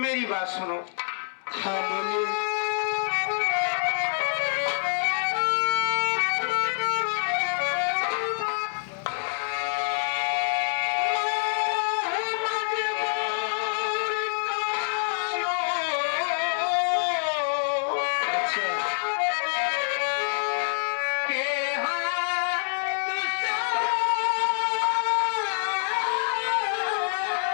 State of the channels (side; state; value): right; silent; digital silence